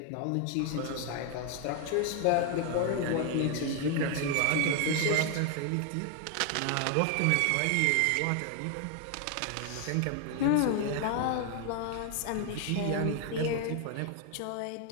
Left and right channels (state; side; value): different; both; correlation 0.00